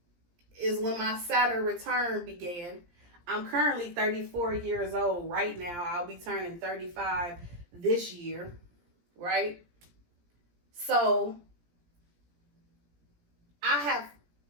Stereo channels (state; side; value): late; left; 17 ms